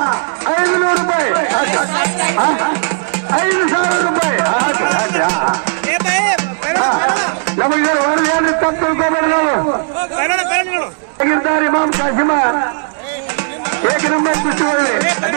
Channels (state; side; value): silent; left; digital silence